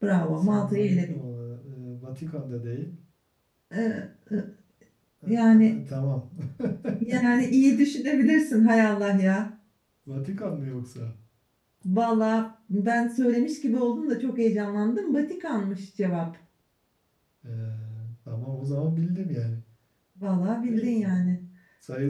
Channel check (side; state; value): both; identical; correlation 1.00